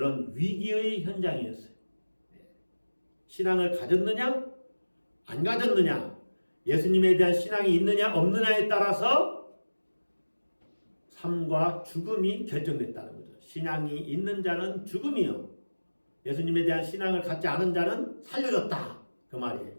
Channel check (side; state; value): both; inverted; correlation -1.00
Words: 위기의 현장이었어요. 신앙을 가졌느냐? 안 가졌느냐? 예수님에 대한 신앙이 있느냐 없느냐에 따라서 삶과 죽음이 결정됐다는 거죠. 신앙이 있는 자는 죽음이요, 예수님에 대한 신앙을 갖지 않은 자는 살려졌다, 그 말이에요.